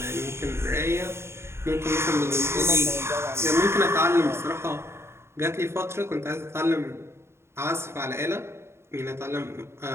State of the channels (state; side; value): late; left; 0.12 ms